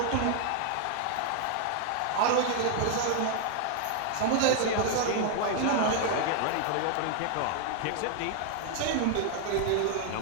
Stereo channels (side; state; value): both; different; correlation 0.00